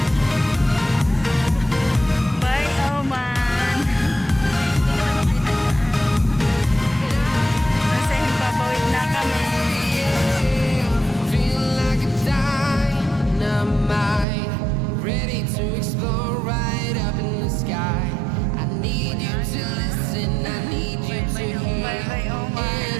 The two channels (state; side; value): drops out; left; at 14.2 s